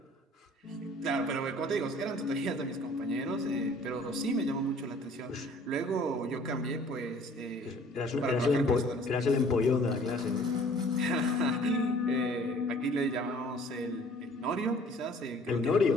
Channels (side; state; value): both; normal; correlation 0.53